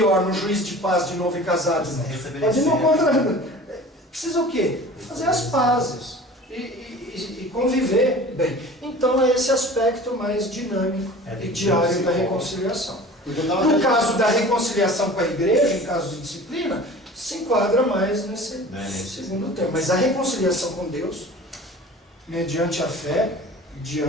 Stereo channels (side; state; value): both; normal; correlation 0.41